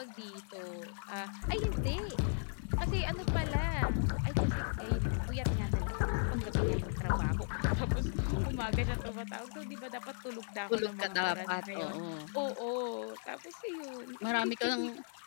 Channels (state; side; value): silent; right; digital silence